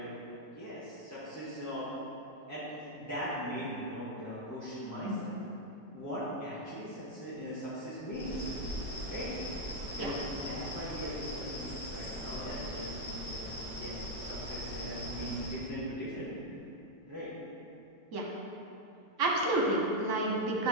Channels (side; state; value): both; normal; correlation 0.01